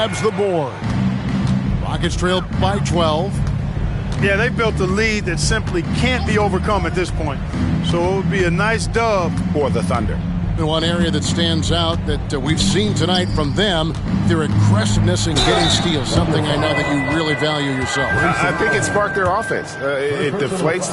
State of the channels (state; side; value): identical; both; correlation 1.00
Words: the board. Rockets trail by 12. Yeah, they built a lead that simply can't be overcome at this point. So it would be a nice dub For the Thunder. And one area that stands out that we've seen tonight from them, their aggressiveness in getting steals, something I know that you really value yourself. I think it sparked their offense. It deflates